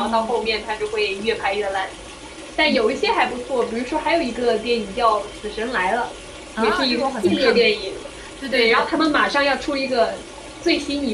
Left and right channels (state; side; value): identical; both; correlation 1.00